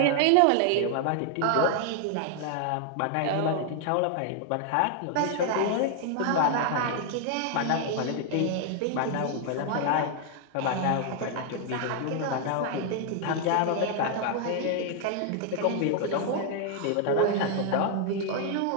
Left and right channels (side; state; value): both; different; correlation 0.00